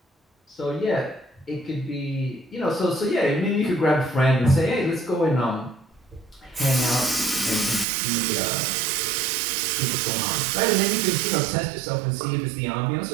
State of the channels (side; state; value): left; drops out; at 7.9 s